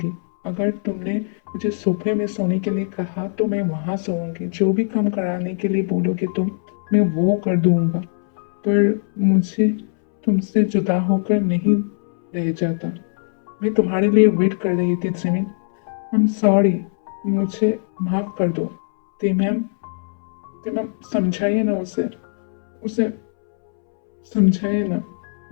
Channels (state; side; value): silent; right; 65 dB below the other